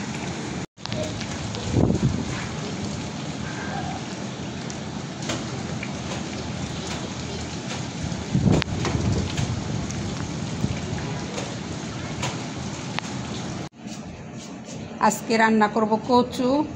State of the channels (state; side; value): identical; both; correlation 1.00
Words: আজকে রান্না করব কচু,